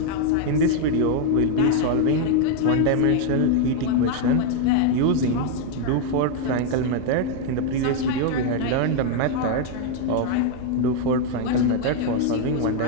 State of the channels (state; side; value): different; both; correlation 0.00